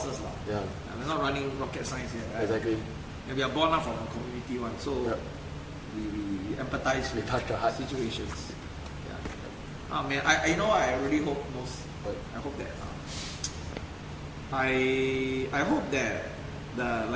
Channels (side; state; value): both; identical; correlation 1.00